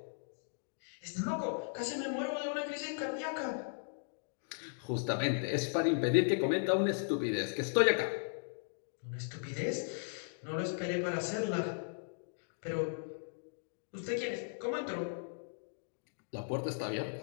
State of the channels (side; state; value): right; silent; digital silence